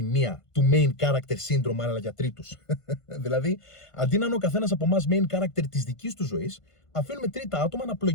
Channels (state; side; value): late; right; 1.5 ms